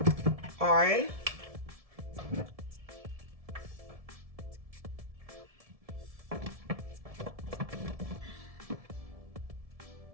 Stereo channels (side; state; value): left; late; 1.7 ms